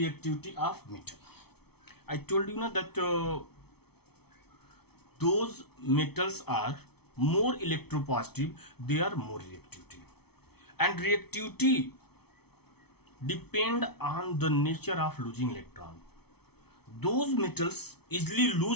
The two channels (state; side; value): late; right; 0.97 ms